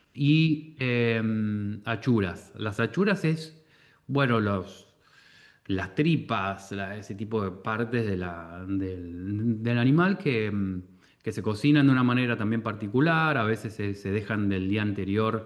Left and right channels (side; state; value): both; identical; correlation 1.00